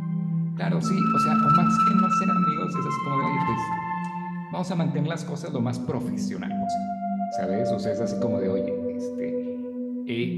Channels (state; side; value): identical; both; correlation 1.00